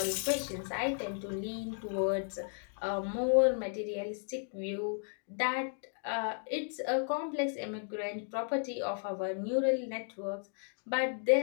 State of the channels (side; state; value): right; silent; 55 dB below the other